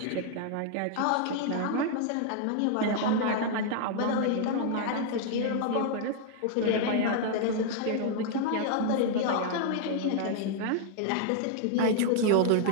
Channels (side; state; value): both; different; correlation 0.00